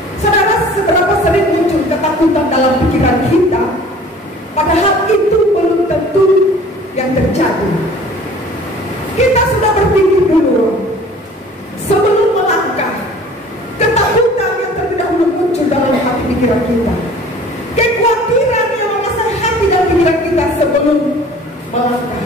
Saudara, seberapa sering muncul ketakutan dalam pikiran kita, padahal itu belum tentu yang terjadi. Kita sudah berpikir dulu sebelum melangkah. Ketakutan yang terlebih dahulu muncul dalam hati pikiran kita. Kekhawatiran yang menguasai hati dan pikiran kita sebelum melangkah.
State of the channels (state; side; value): normal; both; correlation 0.48